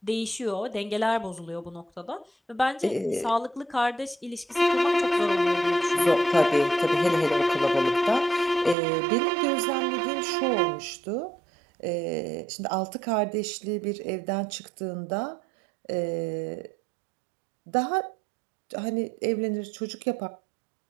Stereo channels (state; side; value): drops out; left; at 8.8 s